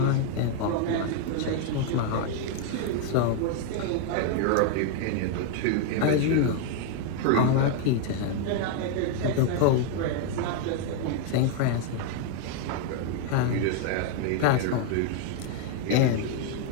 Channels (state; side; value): different; both; correlation 0.00